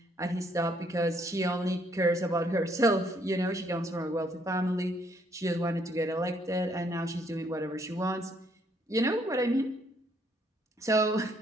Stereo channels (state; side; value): normal; both; correlation 0.68